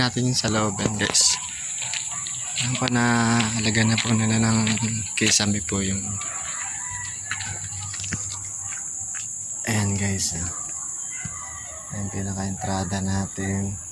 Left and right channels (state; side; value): identical; both; correlation 1.00